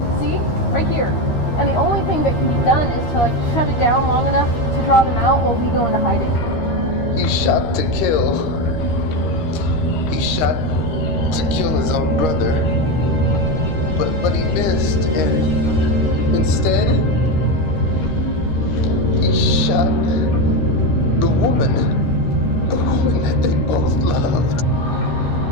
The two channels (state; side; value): late; right; 13 ms